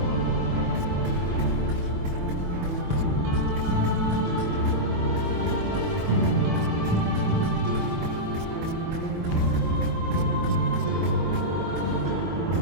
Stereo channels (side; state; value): left; late; 24 ms